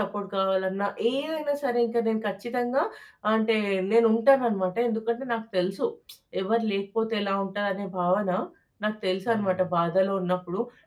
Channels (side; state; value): both; identical; correlation 1.00